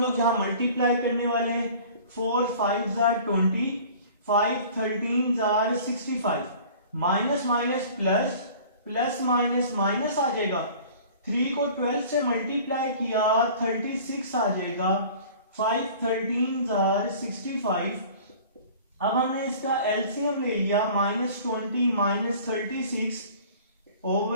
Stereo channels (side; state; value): both; inverted; correlation -0.46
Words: लोग यहां मल्टीप्लाई करने वाले हैं। 4 5s are 20, 5 13s are 65, minus minus plus, plus minus minus आ जाएगा। 3 को 12 से मल्टीप्लाई किया 36 आ जाएगा। 5 13s are 65। अब हमने इसका एलसीएम ले लिया, -20